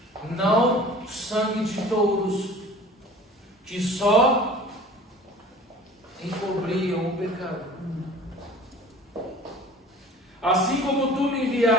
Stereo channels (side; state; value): both; normal; correlation 0.44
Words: Não sangue de touros, que só encobriam o pecado. Assim como tu me